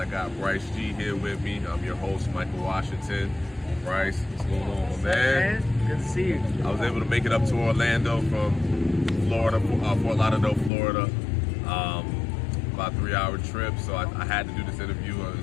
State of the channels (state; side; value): drops out; right; at 10.7 s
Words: got Bryce G here with me. I'm your host, Michael Washington. Bryce, what's going on, my man? Good to see you. I was able to make it up to Orlando from Florida, Fort Lauderdale, Florida. About a 3-hour trip, so I had to do this interview.